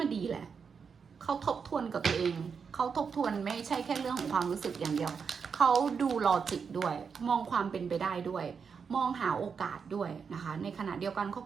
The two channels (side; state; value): left; quieter; 6.0 dB